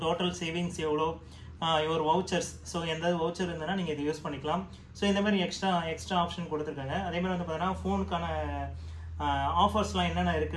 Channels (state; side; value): identical; both; correlation 1.00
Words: டோட்டல் சேவிங்ஸ் எவ்வளோ, ஒரு வவுச்சர்ஸ், ஸோ எந்த வவுச்சர் இருந்ததுன்னா நீங்கள் இதை யூஸ் பண்ணிக்கலாம். ஸோ இந்த மாதிரி எக்ஸ்ட்ரா ஆப்ஷன் கொடுத்துருக்காங்க. அதேமாதிரி வந்து பார்த்தீங்கன்னா ஃபோனுக்கான ஆஃபர்ஸ்லாம் என்னென்ன